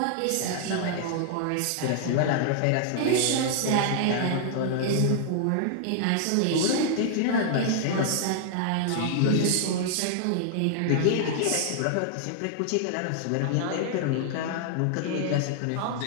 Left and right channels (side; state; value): both; different; correlation -0.01